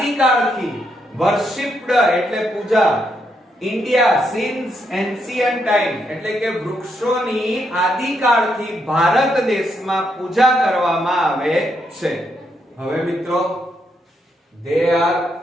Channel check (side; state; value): both; normal; correlation 0.78